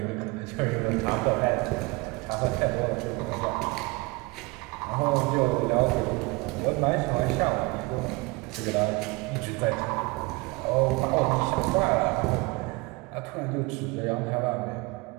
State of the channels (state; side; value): quieter; left; 25.3 dB